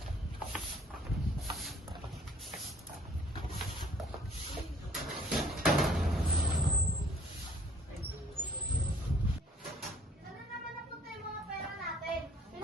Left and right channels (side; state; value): both; normal; correlation 0.58